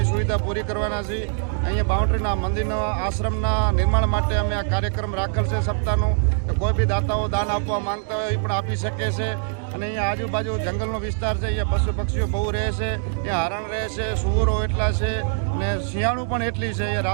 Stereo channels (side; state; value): left; silent; 63 dB below the other